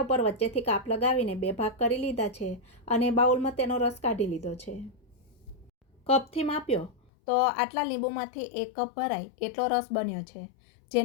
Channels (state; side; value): drops out; right; at 7.1 s